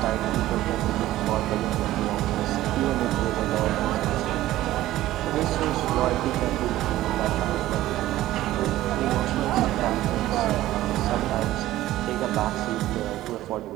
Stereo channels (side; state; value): left; quieter; 15.1 dB